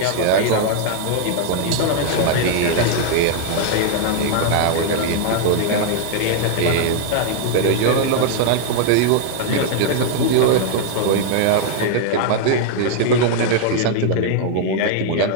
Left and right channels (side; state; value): both; different; correlation 0.00